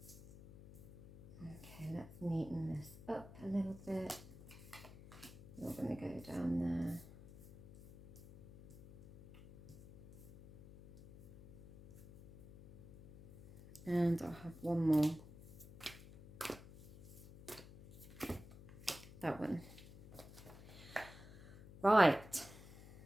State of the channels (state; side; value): noise; left; hum, 18 dB below the sound